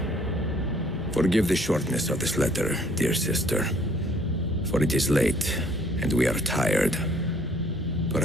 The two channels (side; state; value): both; normal; correlation 0.59